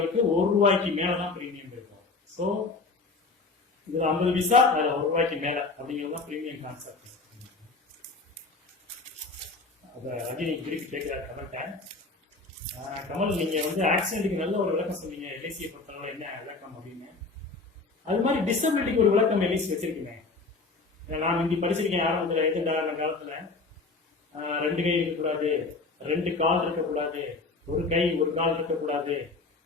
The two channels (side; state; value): right; quieter; 3.8 dB